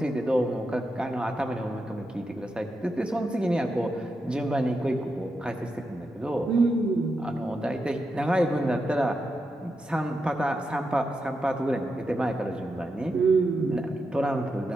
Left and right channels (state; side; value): normal; both; correlation 0.86